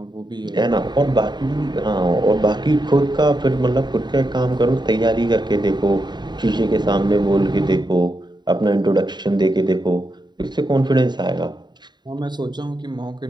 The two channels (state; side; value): late; left; 0.21 ms